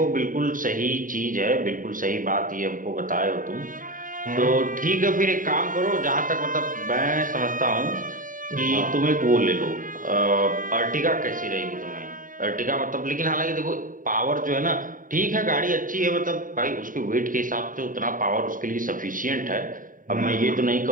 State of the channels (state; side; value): late; left; 0.39 ms